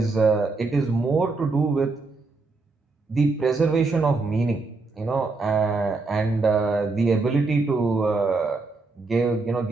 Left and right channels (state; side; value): quieter; left; 3.7 dB